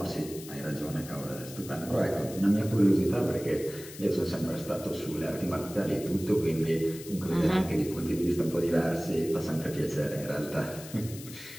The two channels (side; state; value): left; noise; hiss, 15 dB below the sound